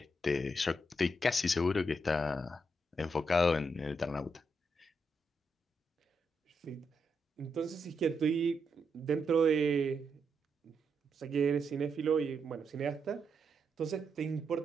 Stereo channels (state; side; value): normal; both; correlation 0.81